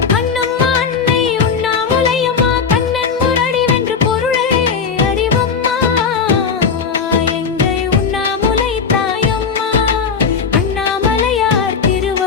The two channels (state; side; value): quieter; right; 5.9 dB